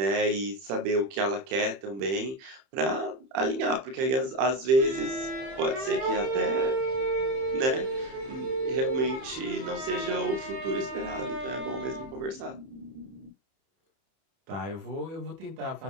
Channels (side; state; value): left; late; 31 ms